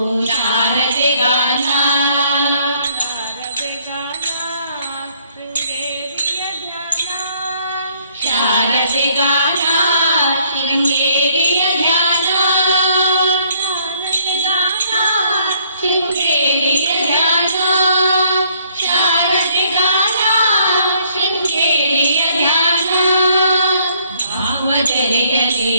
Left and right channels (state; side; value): inverted; both; correlation -0.65